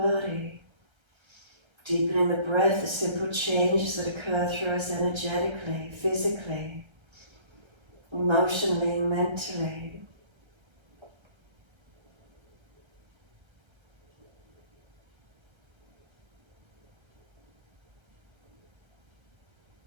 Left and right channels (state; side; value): late; left; 1.3 ms